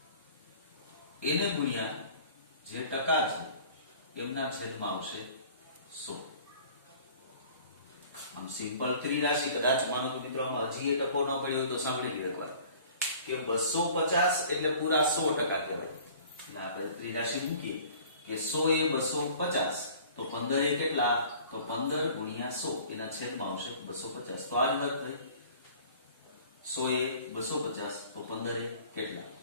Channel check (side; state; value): both; inverted; correlation -0.49